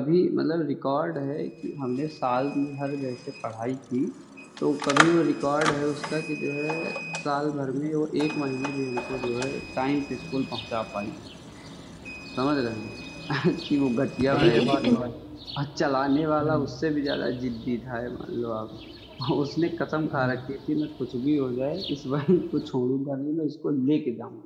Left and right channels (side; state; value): both; identical; correlation 1.00